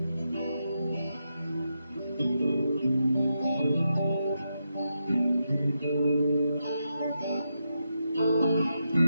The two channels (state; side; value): inverted; both; correlation -0.85